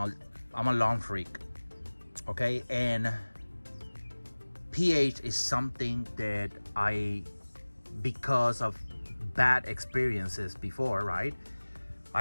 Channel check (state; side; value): inverted; both; correlation -1.00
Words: lawn freak, okay? And pH is something that because of bad experiences before, right,